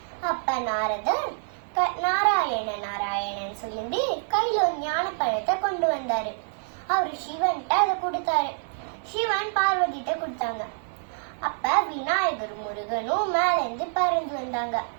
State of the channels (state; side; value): silent; left; 60 dB below the other